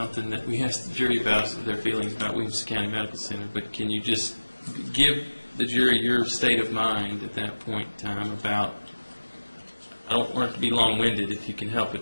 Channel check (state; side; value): inverted; both; correlation -1.00